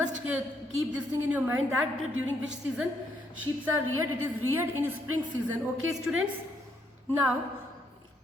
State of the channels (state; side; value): normal; both; correlation 0.73